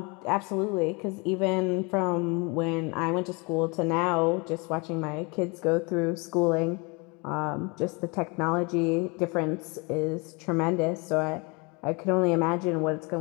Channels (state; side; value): quieter; right; 29.2 dB